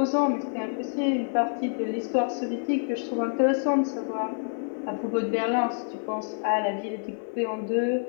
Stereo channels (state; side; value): silent; right; 56 dB below the other